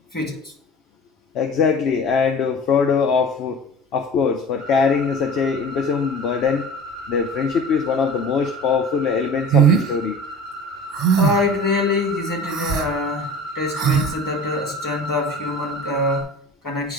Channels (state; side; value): normal; both; correlation 0.39